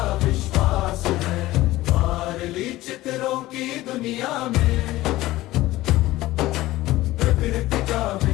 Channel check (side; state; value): right; quieter; 17.1 dB